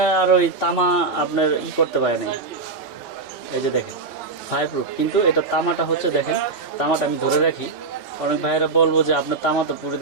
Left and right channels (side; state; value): left; quieter; 4.0 dB